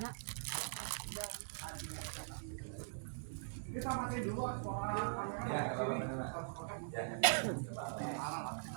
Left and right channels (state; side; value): silent; left; digital silence